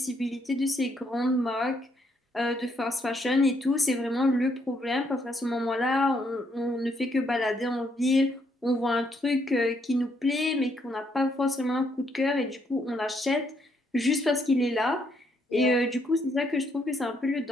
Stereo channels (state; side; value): normal; both; correlation 0.73